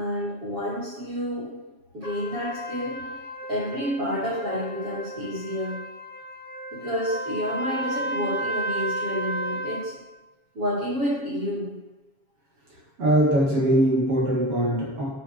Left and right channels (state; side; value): late; left; 7.2 ms